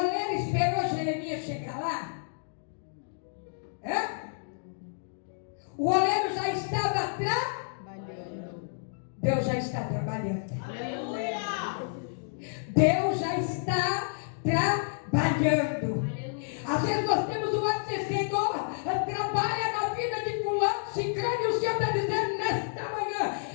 esperou Jeremias chegar lá? É? O oleiro já estava trabalhando. Deus já está trabalhando. Aleluia. Deus já está trabalhando. Às vezes nós temos o ato de Senhor, trabalha na vida de fulano, ciclano, e o Senhor está dizendo nesta manhã:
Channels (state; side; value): silent; right; digital silence